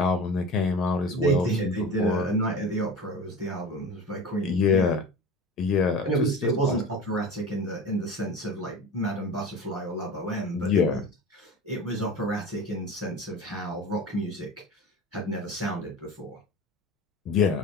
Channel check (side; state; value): both; normal; correlation 0.34